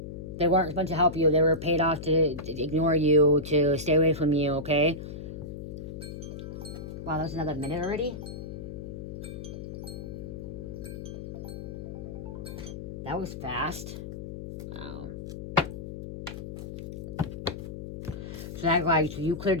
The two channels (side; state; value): left; noise; hum, 8 dB below the sound